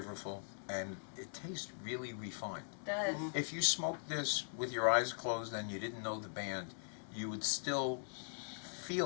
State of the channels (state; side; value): silent; right; digital silence